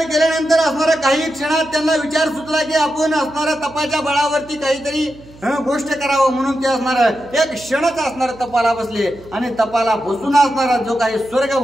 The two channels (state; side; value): noise; right; hum, 22 dB below the sound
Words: केल्यानंतर असणारा काही क्षणात त्यांना विचार सुचला की आपण असणारा तपाच्या बळावरती काहीतरी गोष्ट करावं. म्हणून ते असणार एक क्षणच असणार तपाला बसले, आणि तपाला बसून असणारा जो काही स्वर्ग